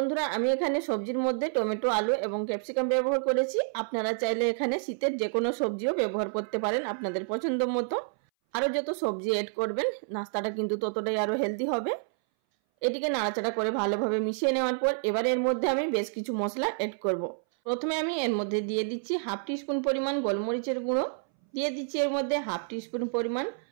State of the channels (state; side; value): silent; left; 59 dB below the other